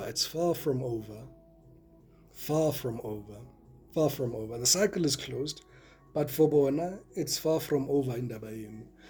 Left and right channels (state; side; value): identical; both; correlation 1.00